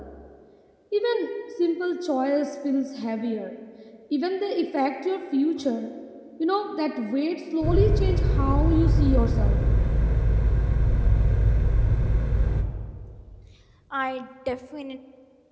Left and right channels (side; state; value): both; identical; correlation 1.00